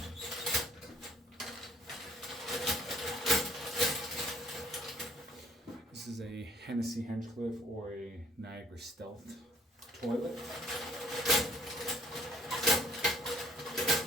This is a Hennessy Hinchcliffe or a Niagara Stealth toilet.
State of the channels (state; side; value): normal; both; correlation 0.60